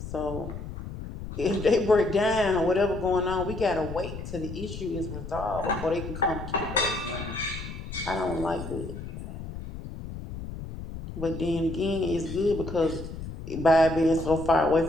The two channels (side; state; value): left; noise; rumble, 9 dB below the sound